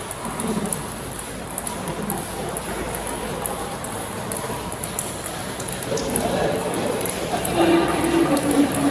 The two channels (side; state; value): both; identical; correlation 1.00